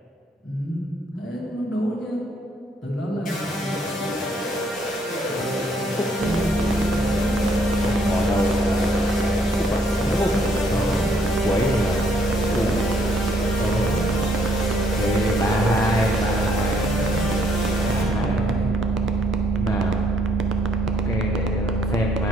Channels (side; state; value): both; normal; correlation 0.69